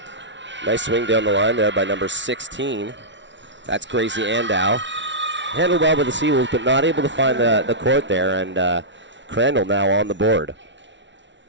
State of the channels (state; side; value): late; left; 0.53 ms